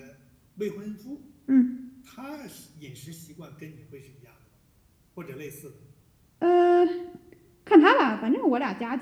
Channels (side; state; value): both; identical; correlation 1.00